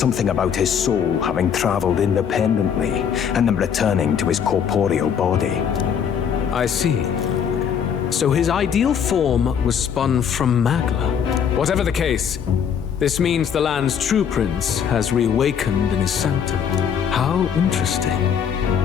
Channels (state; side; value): quieter; right; 7.8 dB